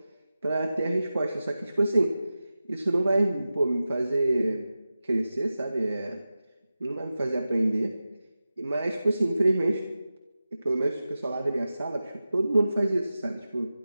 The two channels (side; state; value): both; inverted; correlation -0.94